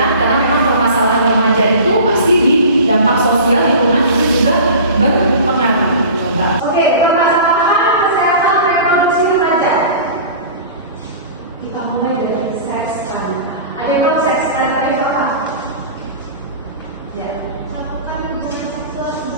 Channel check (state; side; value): inverted; both; correlation -0.38